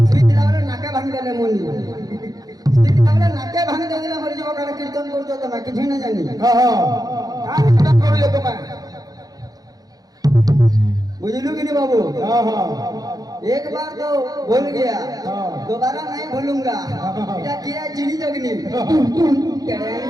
स्वीट लावले नाके भांग देले मुनी। स्वीट लावले नाके भांग देले मर जो का कीर्तन करतो तो मैं किछि ना जानी। का कीर्तन करू तो मैं बुझलू कि नहीं बाबू? एक बार तो भूल गया, दोबारा नहीं भूलूंगा। क्या किया चिड़ी जगनी।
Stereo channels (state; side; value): late; left; 0.18 ms